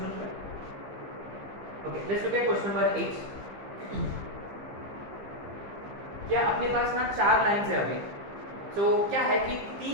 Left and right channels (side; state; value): left; late; 15 ms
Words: पे। Okay, let's look at question number 8। क्या अपने पास ना 4 लाइंस है अभी, तो क्या है कि